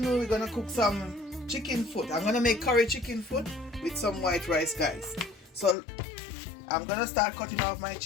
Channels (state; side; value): drops out; right; at 5.8 s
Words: we're gonna cook some chicken foot. I'm gonna make curry chicken foot with some white rice, guys. So I'm gonna start cutting off my